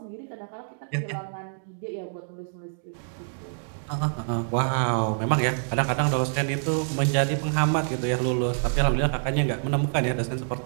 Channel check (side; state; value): left; silent; digital silence